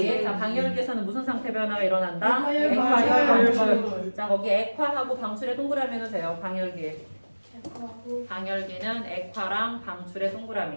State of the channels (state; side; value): inverted; both; correlation -1.00